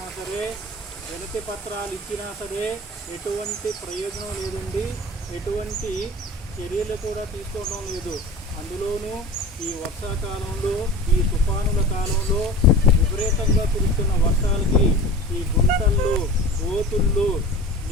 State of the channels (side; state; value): both; normal; correlation 0.37